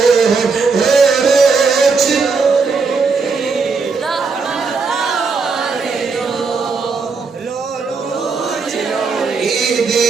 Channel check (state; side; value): quieter; left; 4.7 dB